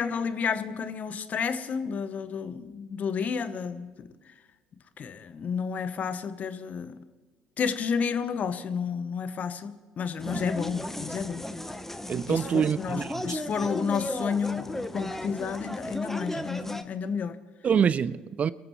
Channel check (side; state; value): both; normal; correlation 0.72